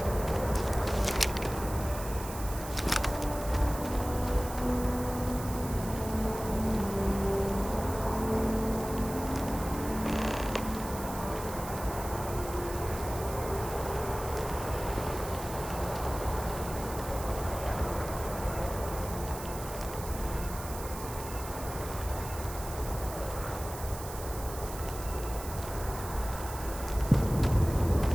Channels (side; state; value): right; noise; hiss, 12 dB below the sound